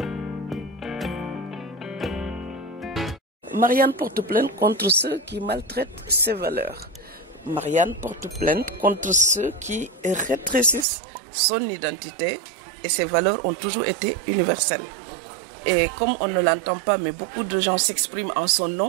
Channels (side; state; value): left; drops out; at 10.9 s